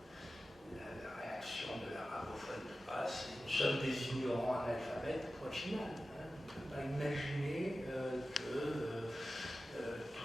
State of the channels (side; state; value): both; normal; correlation 0.94